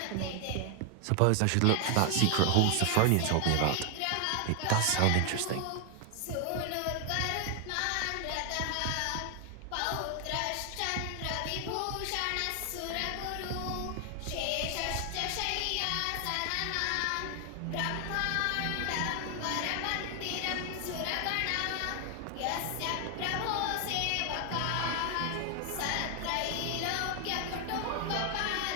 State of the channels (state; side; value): different; both; correlation 0.00